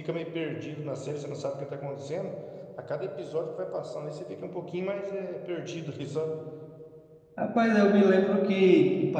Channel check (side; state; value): both; identical; correlation 1.00